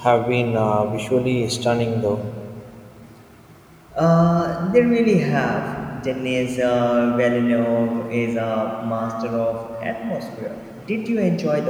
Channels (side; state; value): both; identical; correlation 1.00